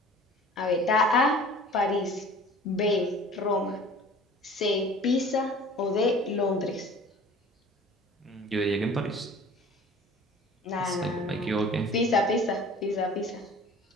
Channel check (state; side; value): normal; both; correlation 0.46